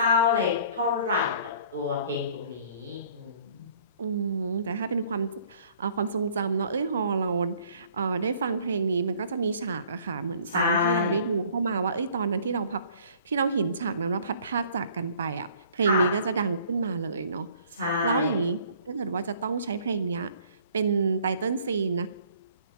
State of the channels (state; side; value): inverted; both; correlation -0.56